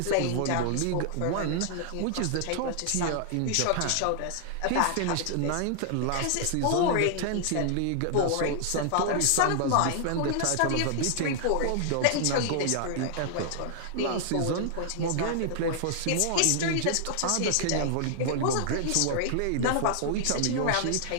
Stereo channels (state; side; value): different; both; correlation -0.01